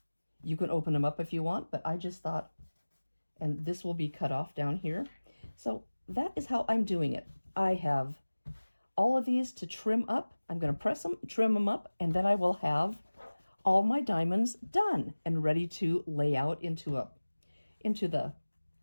you can open them up if you want, but I just thought, and this will be cut off down here. So that is how I'm doing it. I have all of these to trim up. I'm going to press them, trim them up, and then I will have all my diamonds done and ready to lay out into the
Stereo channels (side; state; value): both; inverted; correlation -1.00